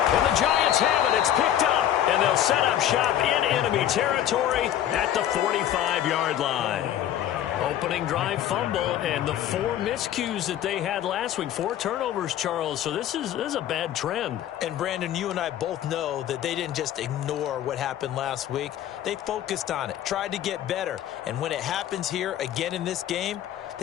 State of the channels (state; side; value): quieter; right; 11.3 dB